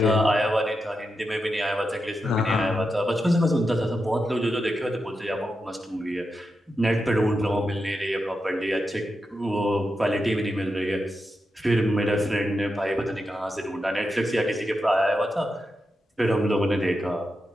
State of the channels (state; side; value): normal; both; correlation 0.88